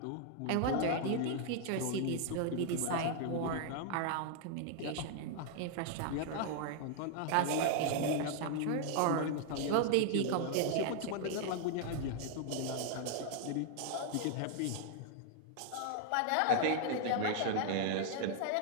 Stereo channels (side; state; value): both; different; correlation 0.00